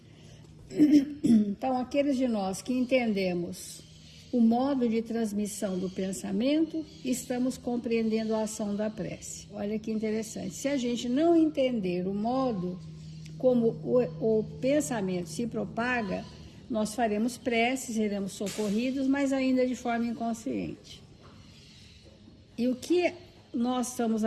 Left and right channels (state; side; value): identical; both; correlation 1.00